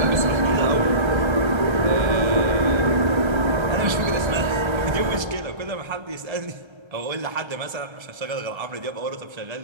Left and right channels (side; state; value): left; late; 1.3 ms